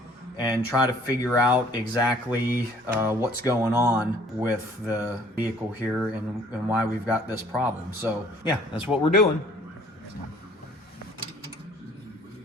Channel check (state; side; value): normal; both; correlation 0.56